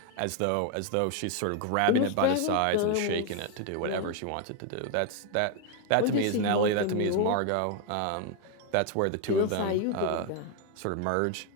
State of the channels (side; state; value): both; different; correlation 0.01